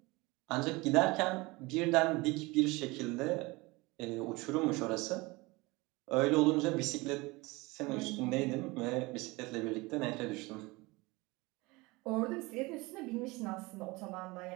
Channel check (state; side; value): quieter; left; 23.4 dB